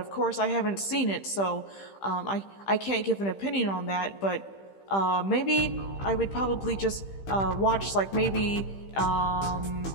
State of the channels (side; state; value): right; late; 15 ms